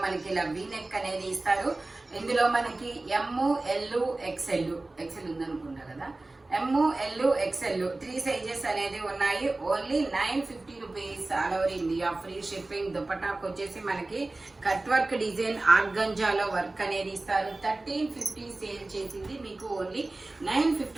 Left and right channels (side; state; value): left; quieter; 3.0 dB